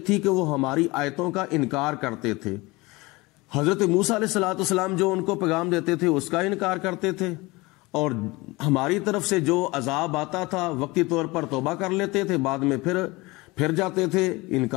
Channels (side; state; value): right; quieter; 22.8 dB